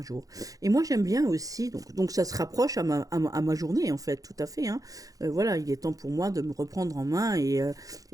jour. Et moi j'aime bien aussi, donc ça se rapproche à ma journée en fait, tout à fait. Hein. Voilà, il est temps pour moi de me reprendre en main et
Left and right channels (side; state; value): left; late; 0.17 ms